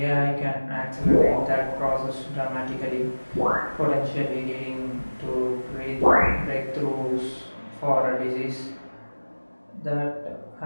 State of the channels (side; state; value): both; inverted; correlation -1.00